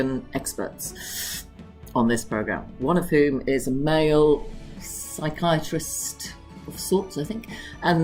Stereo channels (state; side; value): identical; both; correlation 1.00